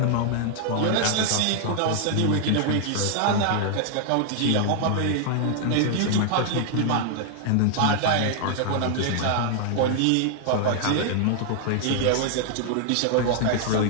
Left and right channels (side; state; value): both; different; correlation 0.00